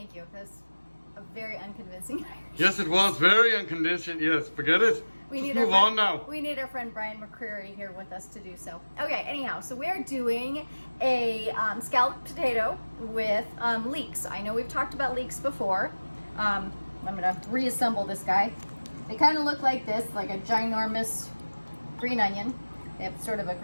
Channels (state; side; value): inverted; both; correlation -1.00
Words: you. That's a very unconvincing Irish. Yes, it was very unconditioned. Yes, forget it. Just move on now. We need our friend Brian McCreary here with us to do so. Okay, anyhow, so we're doing a scalloped potato with leeks. I know we've talked about leeks before. I'm gonna reassemble this guy. They kind of look like this, like a ginormous green onion. They have sort of a